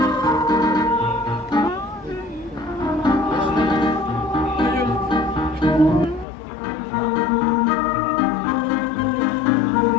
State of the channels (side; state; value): right; drops out; at 6.2 s